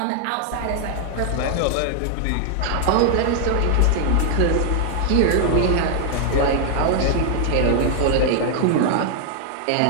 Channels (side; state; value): both; different; correlation 0.00